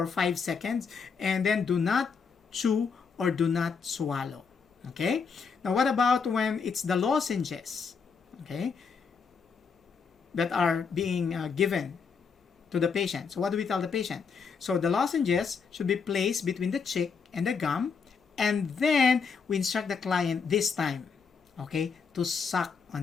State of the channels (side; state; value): right; quieter; 5.6 dB